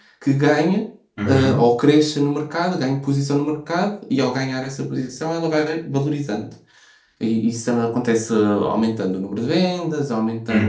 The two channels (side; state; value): both; identical; correlation 1.00